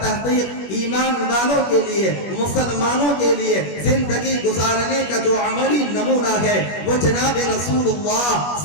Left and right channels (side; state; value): right; late; 21 ms